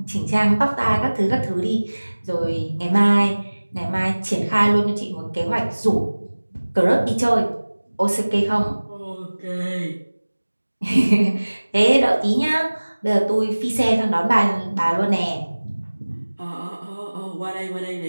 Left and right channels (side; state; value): both; inverted; correlation -1.00